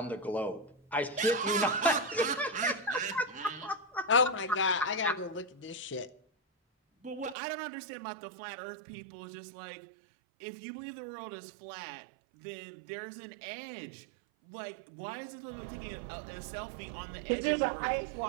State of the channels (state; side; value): drops out; left; at 7.4 s